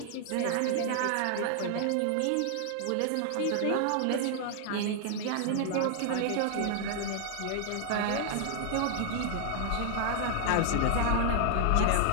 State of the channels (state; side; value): different; both; correlation 0.00